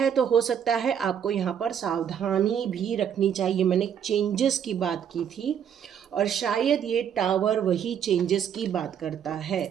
तो हो सकता है आपको यहाँ पर सावधानी भी रखनी चाहिए। मैंने चेंजेस की बात की थी और शायद ये टावर वही चेंजेस की बात करता है।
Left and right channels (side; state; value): left; quieter; 8.5 dB